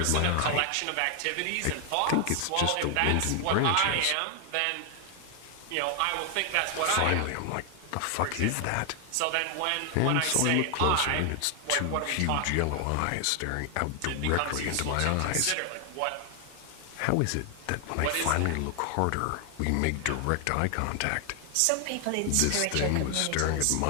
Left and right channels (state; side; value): different; both; correlation 0.00